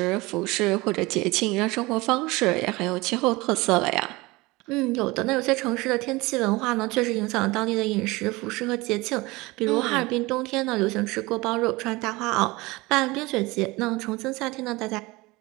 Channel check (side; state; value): left; quieter; 22.3 dB